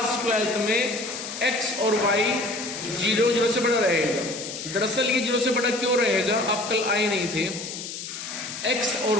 12th में x और y 0, 0 से बड़ा रहेगा। दरअसल ये 0 से बड़ा क्यों रहेगा, आप कल आए नहीं थे। x और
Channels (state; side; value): noise; left; hiss, 8 dB below the sound